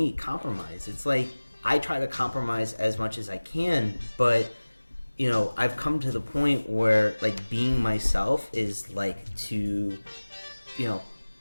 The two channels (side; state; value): both; inverted; correlation -1.00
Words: compromise. It's like I try to compromise as much as I can, but I've come to the point where like being myself is like to